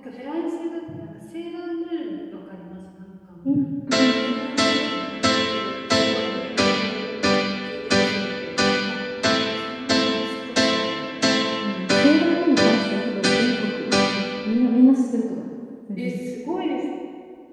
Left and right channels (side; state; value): both; identical; correlation 1.00